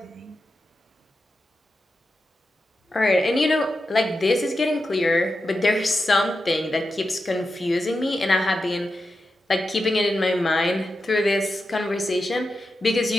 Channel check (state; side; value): normal; both; correlation 0.89